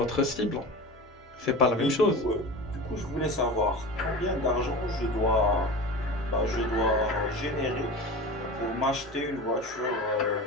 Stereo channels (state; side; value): normal; both; correlation 0.32